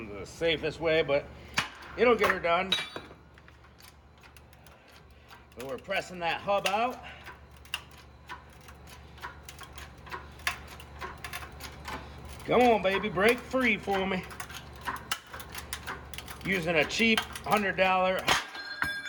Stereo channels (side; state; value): both; identical; correlation 1.00